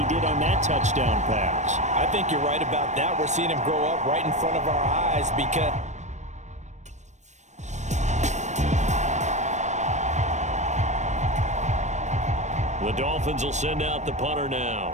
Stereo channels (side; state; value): left; late; 0.34 ms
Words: did on that touchdown pass. I think you're right about that. We're seeing him grow up right in front of our eyes because the Dolphins will send out the punter